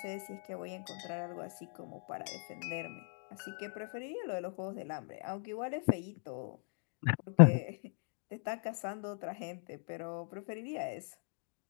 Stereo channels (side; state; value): right; silent; 52 dB below the other